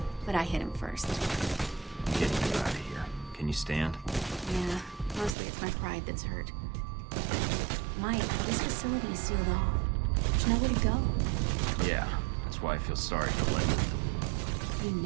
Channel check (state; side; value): drops out; left; at 5.4 s